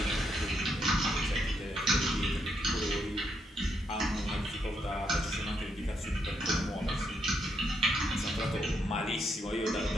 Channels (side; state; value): both; normal; correlation 0.78